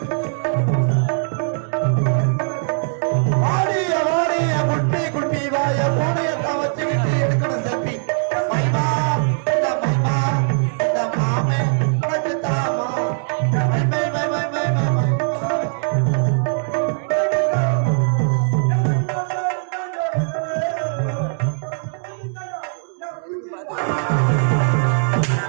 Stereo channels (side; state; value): left; silent; digital silence